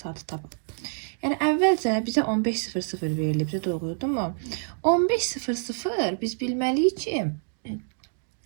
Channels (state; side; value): silent; left; digital silence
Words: saatı tapaq. Yəni əvvəlcə bizə 15:00 verilibdi, doğrudurmu? 15:00 biz bilməliyik ki,